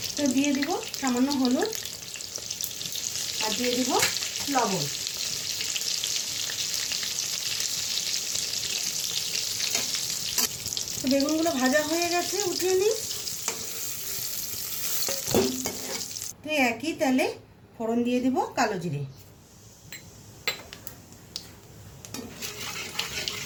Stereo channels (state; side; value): identical; both; correlation 1.00